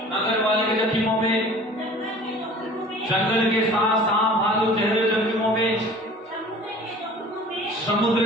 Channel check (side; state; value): both; normal; correlation 0.45